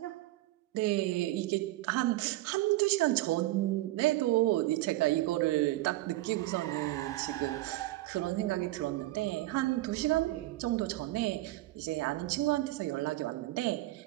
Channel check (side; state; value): left; quieter; 17.2 dB